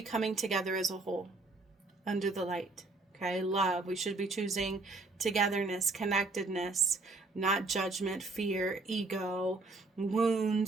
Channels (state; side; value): quieter; left; 3.4 dB